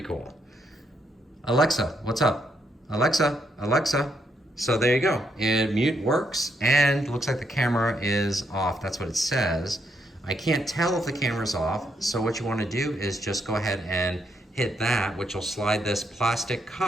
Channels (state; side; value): normal; both; correlation 0.77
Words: cool. Alexa, what's up? Alexa, Alexa. So there you go. Mute works and looks like the camera is off. That's what it says. I can't tell if the camera's off. So what you want to do is just go ahead and hit that, which will slide this plastic